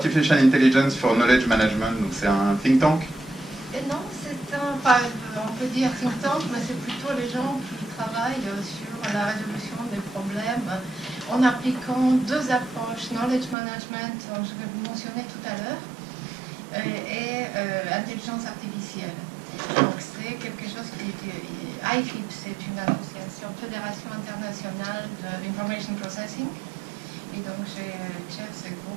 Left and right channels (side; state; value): left; drops out; at 13.6 s